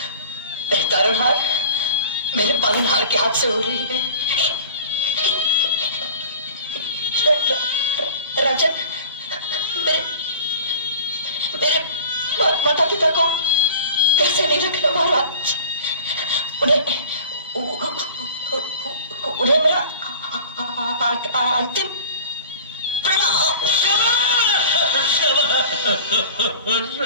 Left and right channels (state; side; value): inverted; both; correlation -0.43